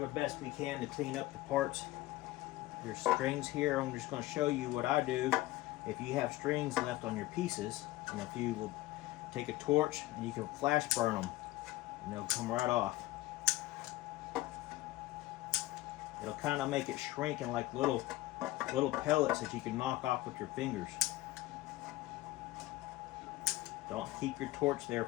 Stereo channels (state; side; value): quieter; right; 17.4 dB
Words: the best we can to clean up the parts. Your strings here, I'm just going to show you what I do if you have strings left on your pieces, and if you will take a torch and you can flash burn them and they'll come right off. It'll kind of make it shrink in like little pellets that you can knock off with your fingers. Don't keep your torch there